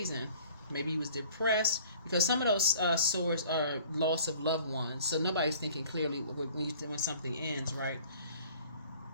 Maybe he was depressed, because some of those swords are loss of loved ones. So nobody's thinking clearly when something ends, right?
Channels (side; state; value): both; inverted; correlation -0.51